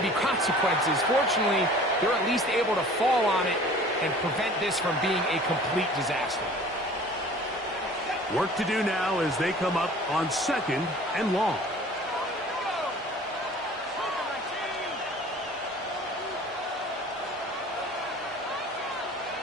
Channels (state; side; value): normal; both; correlation 0.46